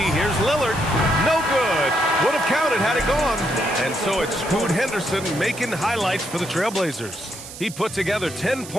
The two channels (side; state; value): right; noise; hiss, 14 dB below the sound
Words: Lillard. No good. Would have counted had it gone. And so it's Scoot Henderson making highlights for the Trailblazers. He put together 10